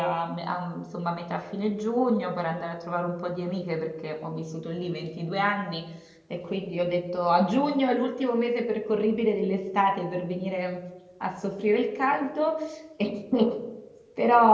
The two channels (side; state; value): both; identical; correlation 1.00